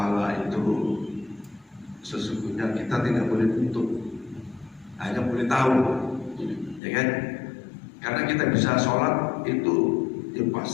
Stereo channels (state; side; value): drops out; right; at 6.8 s